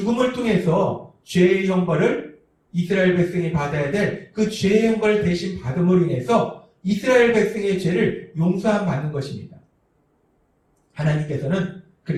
통해서 죄의 형벌을 이스라엘 백성이 받아야 될 그 죄의 형벌을 대신 받음으로 인해서 이스라엘 백성의 죄를 용서함 받는 것입니다. 하나님께서는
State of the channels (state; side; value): identical; both; correlation 1.00